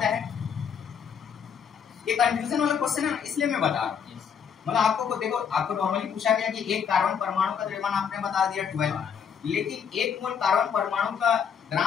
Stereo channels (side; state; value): right; quieter; 7.2 dB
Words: है? ये कंफ्यूजन वाला क्वेश्चन है, इसलिए मैं बता रहा हूँ। मतलब आपको देखो, आपको नॉर्मली पूछा गया कि एक कार्बन परमाणु का द्रव्यमान आपने बता दिया 12, लेकिन एक मोल कार्बन परमाणु का